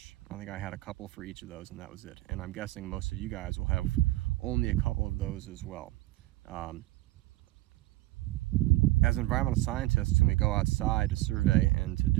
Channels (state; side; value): quieter; left; 18.1 dB